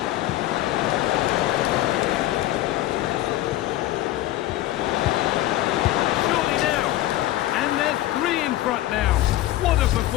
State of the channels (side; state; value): right; quieter; 15.3 dB